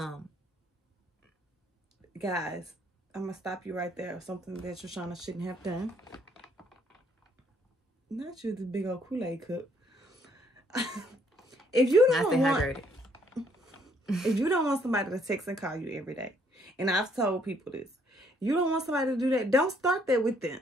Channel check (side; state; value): both; normal; correlation 0.67